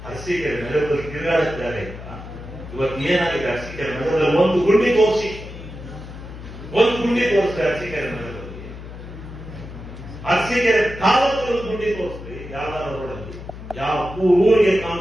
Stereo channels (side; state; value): left; noise; hum, 13 dB below the sound